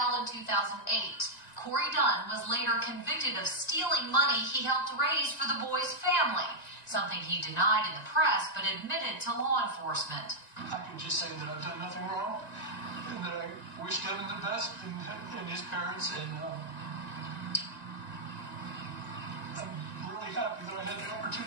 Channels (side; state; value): right; late; 1.9 ms